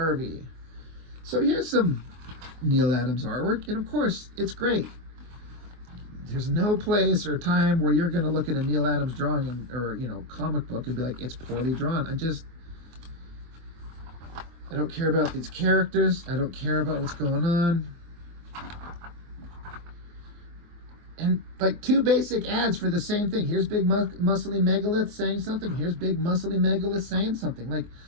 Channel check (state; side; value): late; left; 24 ms